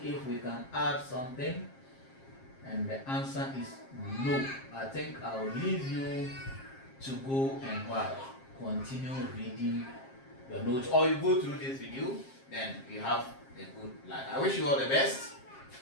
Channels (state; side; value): late; right; 7.5 ms